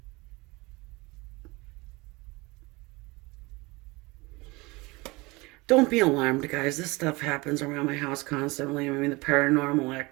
Don't be alarmed, guys. This stuff happens around my house constantly. I mean, the paranormal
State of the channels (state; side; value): quieter; left; 24.0 dB